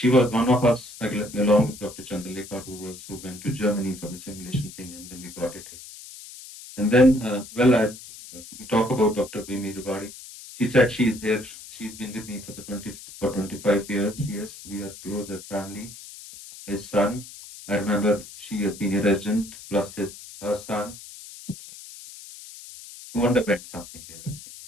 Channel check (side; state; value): left; noise; hiss, 16 dB below the sound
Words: was one of us, along with Dr. Chandalekha, who went to Germany for the simulation thing, and then we got it here. And then, we talk about Dr. Vimi Rugadi. She said she is here. She's been with me for 25 years. Yes, we are close as families. His son, I remember she has been a resident, plus her son, who underwent something here. I think.